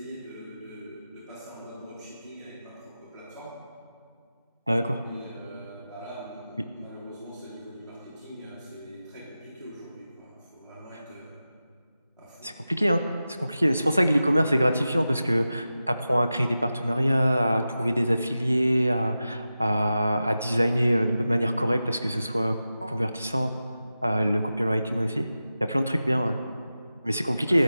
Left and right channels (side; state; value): both; inverted; correlation -0.93